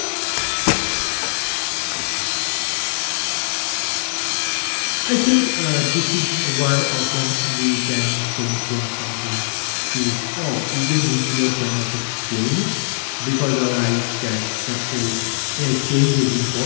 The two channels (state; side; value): silent; right; digital silence